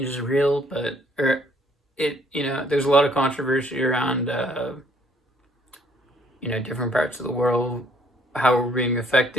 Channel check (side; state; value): both; normal; correlation 0.63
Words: is real, but there's a lot of controversy around different parts of the world, how we're being